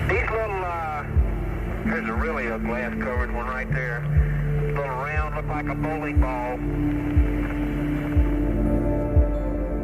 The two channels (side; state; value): both; identical; correlation 1.00